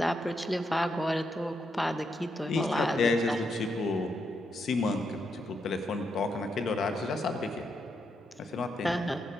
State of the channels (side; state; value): both; normal; correlation 0.81